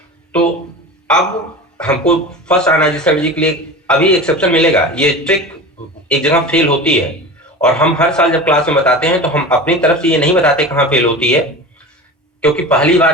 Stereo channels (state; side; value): normal; both; correlation 0.32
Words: तो अब हमको फर्स्ट आयनाइजिंग एनर्जी के लिए अभी एक्सेप्शन मिलेगा। ये ट्रिक एक जगह फेल होती है और हम हर साल जब क्लास में बताते हैं तो हम अपनी तरफ से ये नहीं बताते कहां फेल होती है, क्योंकि पहली